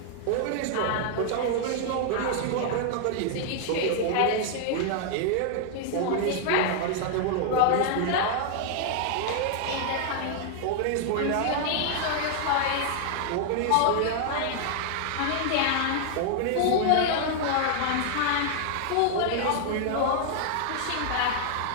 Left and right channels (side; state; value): both; different; correlation 0.00